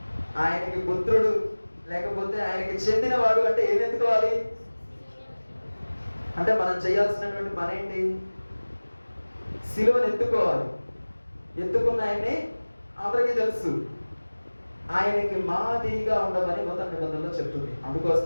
ఆయనకి పుత్రుడు, లేకపోతే ఆయనకి చెందినవాడు అంటే ఏం ఎత్తుకోవాలి? అంటే మనం చేయాల్సినటువంటి పని ఏంటి? సిలువను ఎత్తుకోవాలి. ఎత్తుకున్న ఆయన్ని అందరికీ తెలుసు. ఆయనకి మాదిరిగా ఉండమని నూతన నిబంధనలో చెప్తుంది.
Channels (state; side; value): inverted; both; correlation -1.00